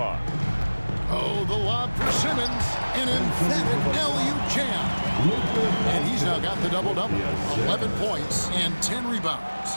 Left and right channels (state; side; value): inverted; both; correlation -1.00